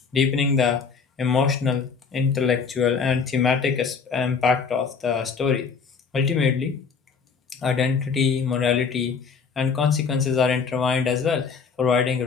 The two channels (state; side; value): quieter; right; 5.6 dB